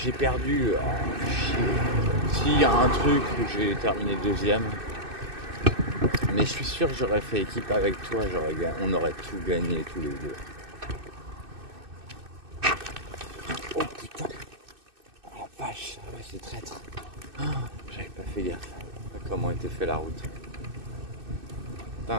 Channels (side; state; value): left; late; 2.6 ms